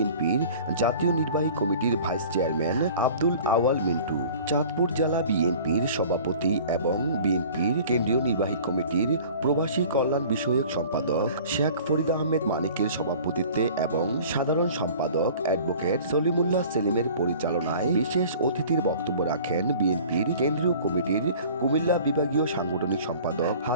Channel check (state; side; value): inverted; both; correlation -0.46